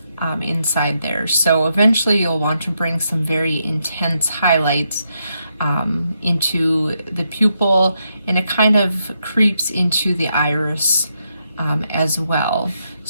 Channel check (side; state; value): both; inverted; correlation -0.81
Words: inside there. So eventually you'll want to bring some very intense highlights into the pupil, and it kind of creeps into the iris as well.